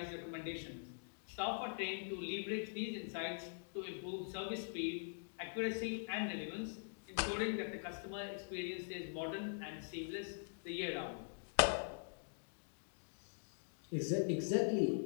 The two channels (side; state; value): right; silent; digital silence